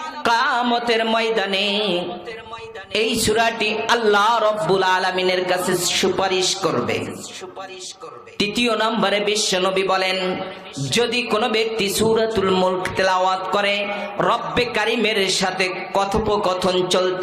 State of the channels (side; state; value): both; identical; correlation 1.00